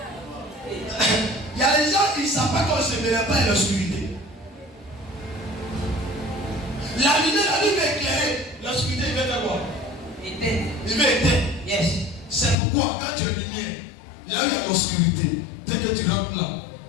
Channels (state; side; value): drops out; right; at 12.6 s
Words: Il y a des gens qui ne savent pas qu'on ne se mélange pas à l'obscurité. La lumière, la lumière va éclairer. L'obscurité, il va faire quoi? Il va éteindre. Yes. C'est pourquoi quand tu es lumière, là où il y a l'obscurité, dès que tu rentres là,